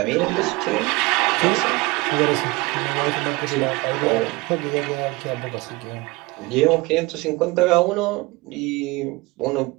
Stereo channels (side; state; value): left; quieter; 23.5 dB